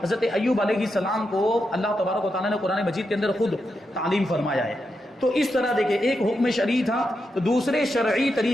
حضرت ایوب علیہ السلام کو اللہ تبارک و تعالیٰ نے قرآن مجید کے اندر خود تعلیم فرمایا ہے۔ تو اس طرح دیکھیں، ایک حکم شرعی تھا تو دوسرے شرعی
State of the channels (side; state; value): both; normal; correlation 0.85